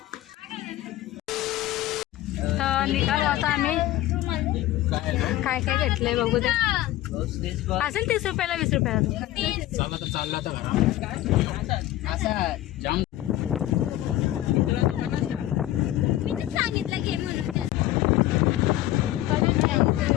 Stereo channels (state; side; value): quieter; right; 14.8 dB